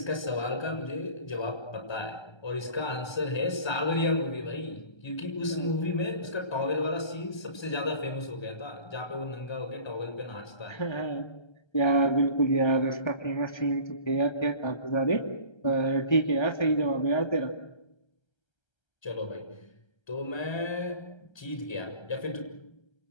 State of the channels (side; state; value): right; late; 1.3 ms